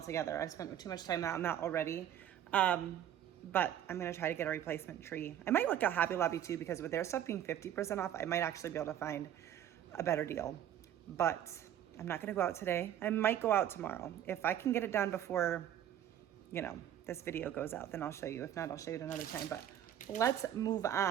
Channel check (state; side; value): quieter; left; 10.8 dB